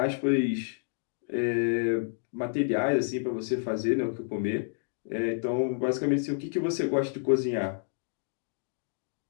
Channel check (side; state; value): right; silent; digital silence